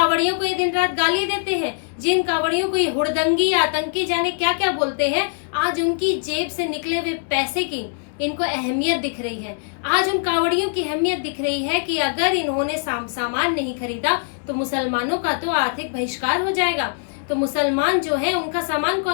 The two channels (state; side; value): silent; right; digital silence